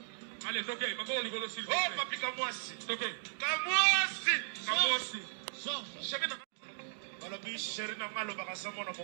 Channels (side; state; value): left; silent; digital silence